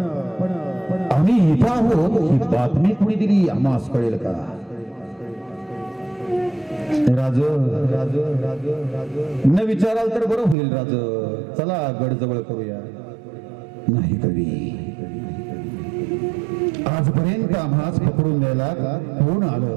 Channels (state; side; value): drops out; left; at 10.6 s